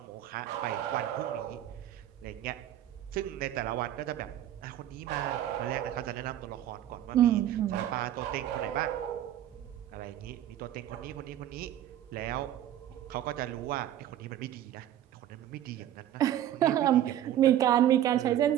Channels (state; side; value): quieter; left; 11.8 dB